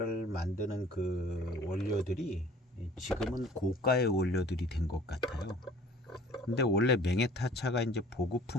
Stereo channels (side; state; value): both; normal; correlation 0.51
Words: 만드는 그 원료들이 지금은 고가의 원료들이 된 것 같아요. 근데 원래 맹해타차가 이제